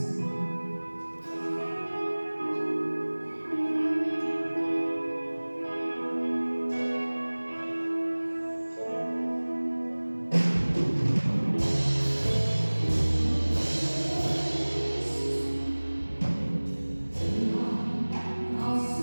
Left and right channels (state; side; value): inverted; both; correlation -1.00